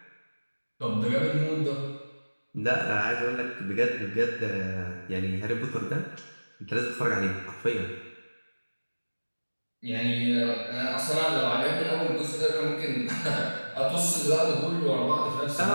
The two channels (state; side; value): inverted; both; correlation -1.00